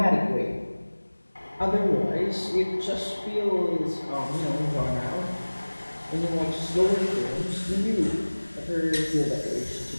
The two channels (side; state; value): both; inverted; correlation -1.00